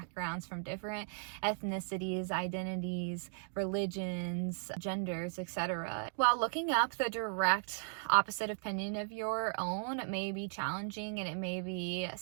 from different ethnicities, identities, religions, genders, etc. While looking up the direct opposite opinion of your own may be challenging and it may be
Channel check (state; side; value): silent; left; digital silence